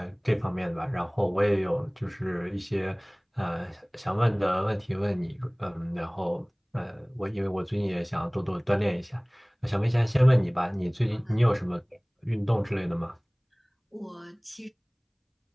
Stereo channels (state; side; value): identical; both; correlation 1.00